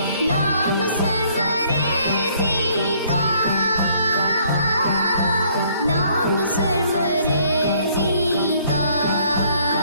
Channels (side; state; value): both; inverted; correlation -0.63